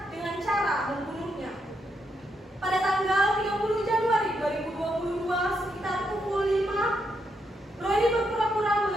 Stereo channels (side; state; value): both; normal; correlation 0.80